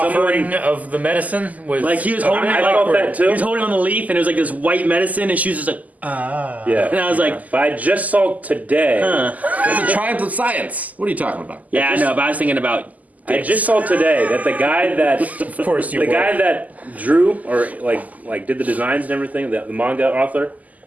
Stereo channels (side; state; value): left; late; 0.077 ms